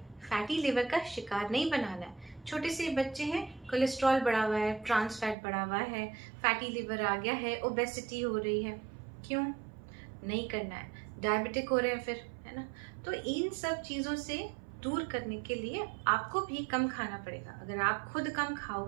फैटी लिवर का शिकार नहीं बनाना है। छोटे से बच्चे हैं, कोलेस्ट्रॉल बढ़ा हुआ है, ट्रांस फैट बढ़ा हुआ है, फैटी लिवर आ गया है, ओबेसिटी हो रही है, क्यों नहीं करना है, डायबिटिक हो रहे हैं फिर, है ना। तो इन सब चीज़ों से दूर करने के लिए आपको भी कम खाना पड़ेगा। अगर आप खुद कम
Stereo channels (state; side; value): drops out; left; at 5.4 s